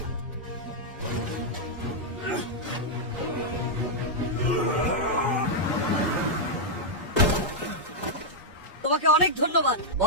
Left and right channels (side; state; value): both; normal; correlation -0.05